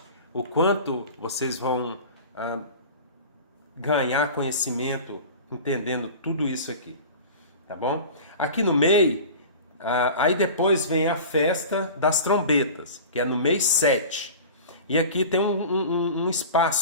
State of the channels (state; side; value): inverted; both; correlation -0.36